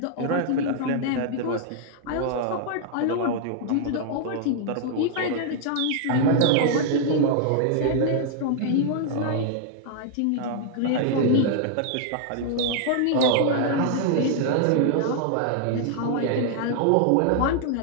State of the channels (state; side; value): different; both; correlation 0.00